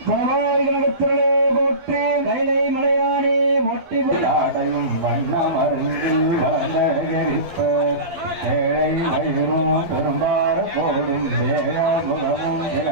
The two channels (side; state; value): left; late; 12 ms